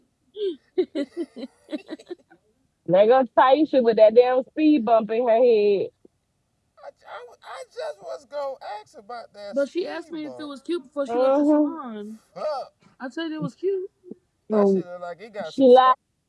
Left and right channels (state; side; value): identical; both; correlation 1.00